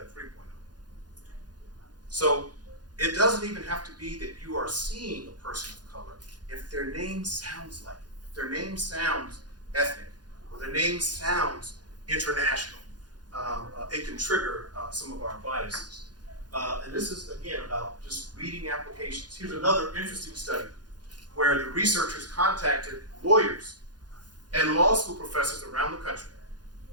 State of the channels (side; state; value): left; late; 0.69 ms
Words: 3.0. So it doesn't even have to be that you are seeing a person of color. If their name sounds like it, if their name sounds ethnic, or their name sounds international, it can trigger some of our biases. And this is, again, about just reading applications. Here's another interesting study where the researchers contacted lawyers and law school professors around the country.